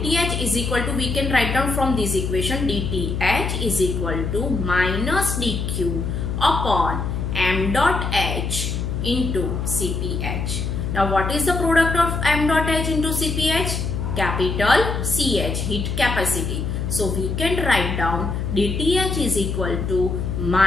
is equal to, we can write down from this equation, dTh is equal to minus dq upon m dot h into Cph. Now what is the product of m dot h into Cph? Capital CH, heat capacity. So we can write down dTh is equal to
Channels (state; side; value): noise; left; hum, 2 dB below the sound